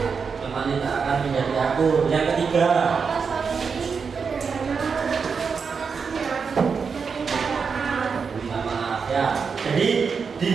teman tidak akan menjadi akur. Yang ketiga, minta maaf ya. Jadi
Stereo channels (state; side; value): quieter; left; 5.7 dB